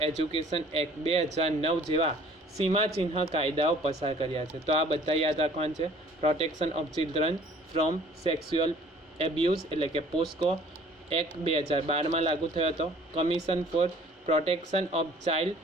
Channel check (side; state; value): both; normal; correlation 0.53